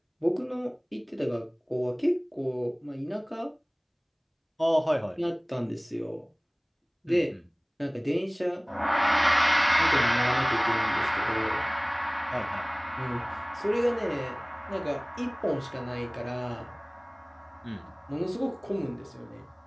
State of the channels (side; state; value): both; identical; correlation 1.00